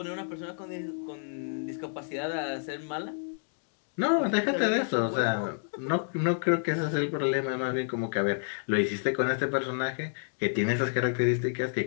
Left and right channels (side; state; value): right; silent; digital silence